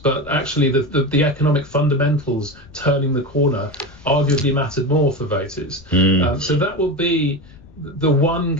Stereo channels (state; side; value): noise; left; rumble, 23 dB below the sound